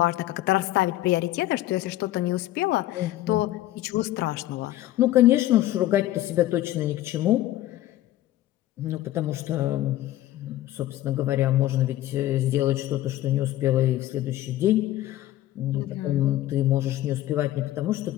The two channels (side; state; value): right; quieter; 14.6 dB